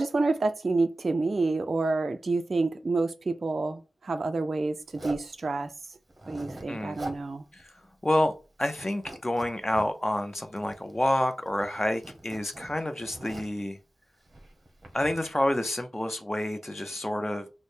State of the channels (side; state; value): both; normal; correlation 0.95